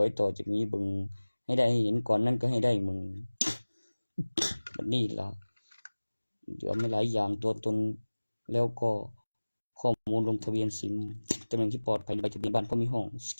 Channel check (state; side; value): inverted; both; correlation -1.00